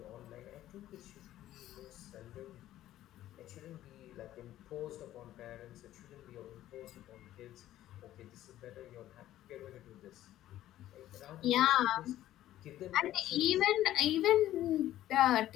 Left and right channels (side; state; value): right; quieter; 13.5 dB